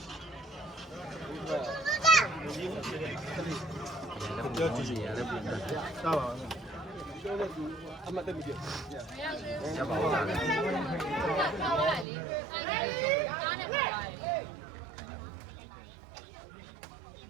ပြောကြည့်ရတယ်ပြန်တာပါပြောလို့သူအမတ်တက်ပြီရပါဘူးလား ထားလိုက်လေအားနဲ့ပါလိုက်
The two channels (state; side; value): drops out; left; at 12.1 s